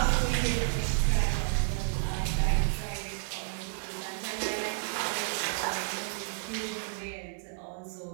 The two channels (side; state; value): left; silent; 57 dB below the other